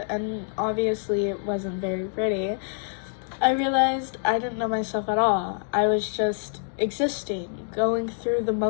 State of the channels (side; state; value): right; silent; digital silence